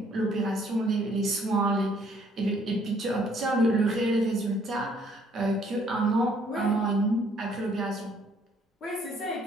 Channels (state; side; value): normal; both; correlation 0.64